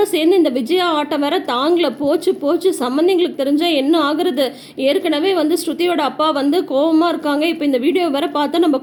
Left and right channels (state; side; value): identical; both; correlation 1.00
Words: சேர்ந்து இந்த விஜயா ஆட்டம் வேற தாங்கல. போச்சு போச்சு, சம்மந்திங்களுக்கு தெரிஞ்சால் என்ன ஆகுறது? ஏற்கனவே ஸ்ருதியோட அப்பா கோபமாக இருக்காங்க. இப்போ இந்த வீடியோ வேற பார்த்தா நம்ம